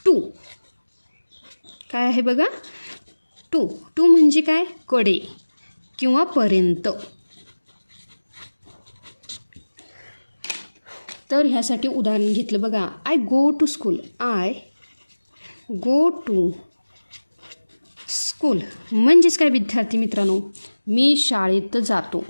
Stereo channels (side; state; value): both; inverted; correlation -1.00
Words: टू. काय आहे बघा? टू. टू म्हणजे काय? कडे किंवा पर्यंत. तर ह्यासाठी उदाहरण घेतलं बघा. I go to school. I go to school म्हणजेच काय विद्यार्थी मित्रांनो, मी शाळेत जातो.